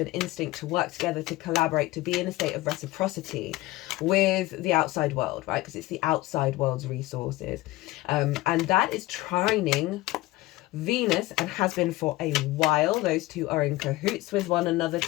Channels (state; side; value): quieter; right; 18.5 dB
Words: instinct to work together, to collaborate, to be in a state of reciprocity with the outside world, right? Because it's the outside world's resources. And that is trining Venus, and has been for a while. Those two are in cahoots with one another